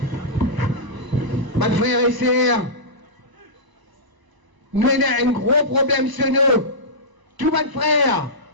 Mes frères et sœurs, nous avons un gros problème sur nous. Tous mes frères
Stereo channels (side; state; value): left; late; 1.0 ms